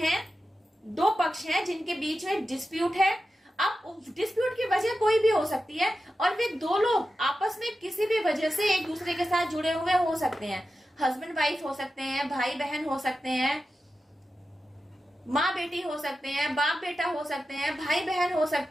दो पक्ष हैं जिनके बीच में डिस्प्यूट है। अब डिस्प्यूट की वजह कोई भी हो सकती है और वे दो लोग आपस में किसी भी वजह से एक दूसरे के साथ जुड़े हुए हो सकते हैं। हस्बैंड वाइफ हो सकते हैं, भाई बहन हो सकते हैं, माँ बेटी हो सकते हैं, बाप बेटा हो सकते हैं, भाई बहन हो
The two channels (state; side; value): normal; both; correlation 0.92